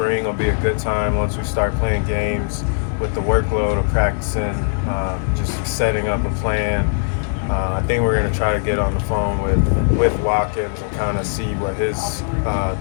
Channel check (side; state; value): right; silent; 66 dB below the other